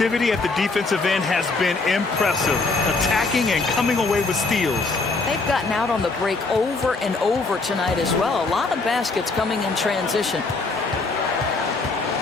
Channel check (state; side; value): quieter; right; 3.8 dB